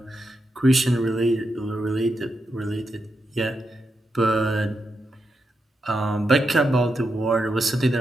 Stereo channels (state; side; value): normal; both; correlation 0.85